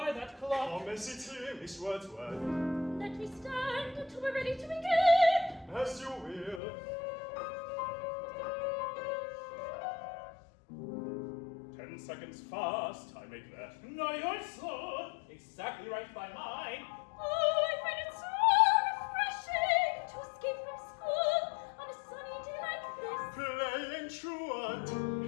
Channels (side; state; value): right; drops out; at 6.6 s